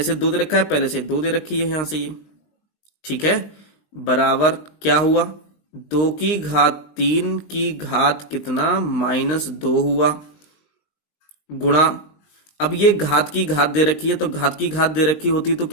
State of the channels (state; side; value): late; right; 19 ms